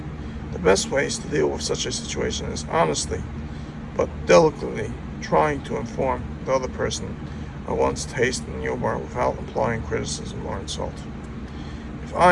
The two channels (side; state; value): both; identical; correlation 1.00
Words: The best ways to deal with such a situation is honestly but delicately trying to inform the other person of one's taste in humor without implying criticism or insult. If